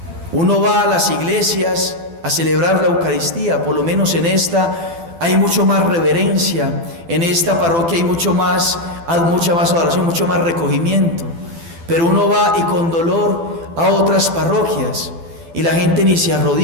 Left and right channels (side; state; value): left; late; 12 ms